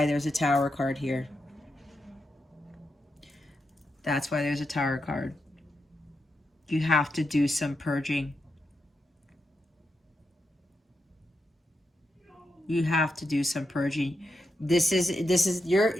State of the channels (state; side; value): normal; both; correlation 0.85